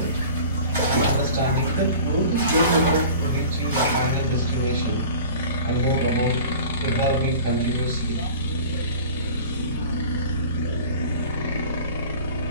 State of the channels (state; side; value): inverted; both; correlation -0.41